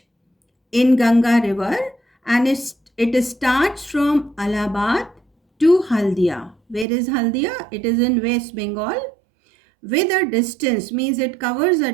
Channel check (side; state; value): left; drops out; at 6.9 s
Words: in Ganga River, and it starts from Allahabad to Haldia. Where is Haldia? It is in West Bengal, with a distance, means it covers a